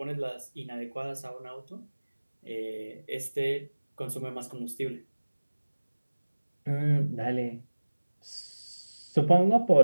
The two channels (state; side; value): inverted; both; correlation -1.00